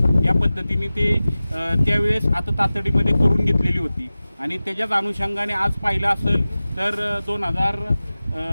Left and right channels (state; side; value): inverted; both; correlation -0.97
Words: या पद्धतीने ते त्यावेळेस आता तातडीमध्ये करून घेतलेली होती. आणि त्याच्याच अनुषंगाने आज पाहिलं असेल तर